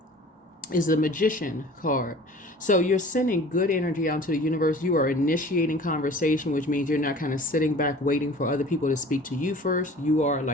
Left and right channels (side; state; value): both; normal; correlation 0.45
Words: is the Magician card. So you're sending good energy out into the universe. You are initiating conversation, which means you're not kind of sitting back waiting for other people to speak to you first. You are,